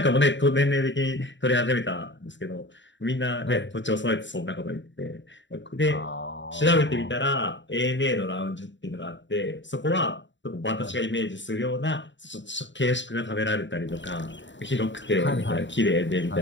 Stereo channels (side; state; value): right; late; 0.54 ms